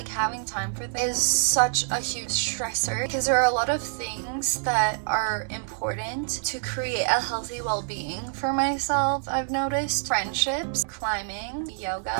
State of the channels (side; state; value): left; silent; digital silence